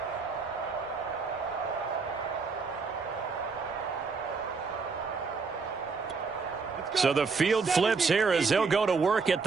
So the field flips here as they'll go to work at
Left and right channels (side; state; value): left; quieter; 4.8 dB